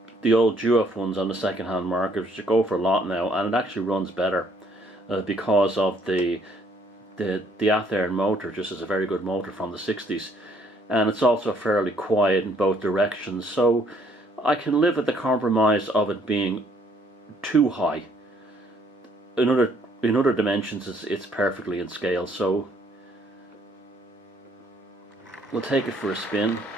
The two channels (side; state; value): both; normal; correlation 0.65